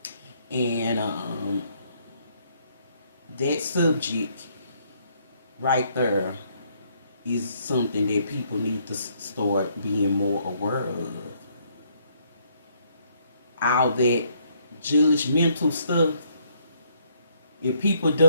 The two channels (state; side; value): inverted; both; correlation -0.69